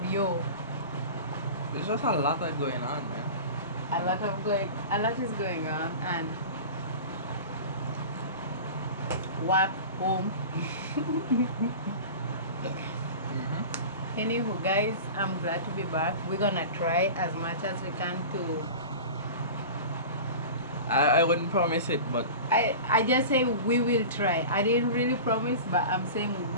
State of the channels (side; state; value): both; inverted; correlation -0.34